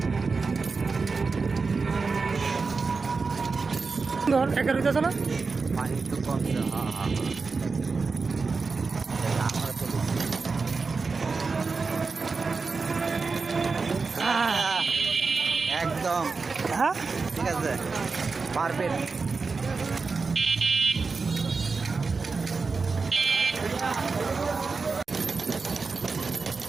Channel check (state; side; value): quieter; left; 4.5 dB